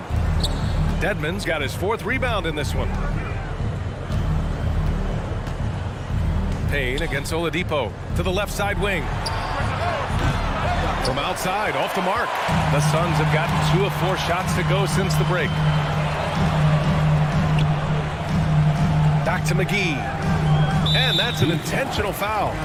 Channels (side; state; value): both; identical; correlation 1.00